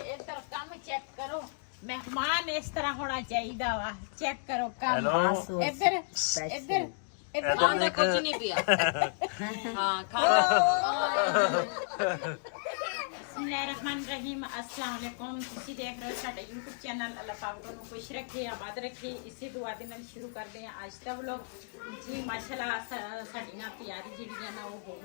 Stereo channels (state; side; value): silent; right; digital silence